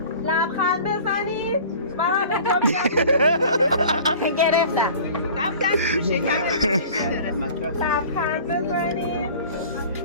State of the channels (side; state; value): both; inverted; correlation -0.44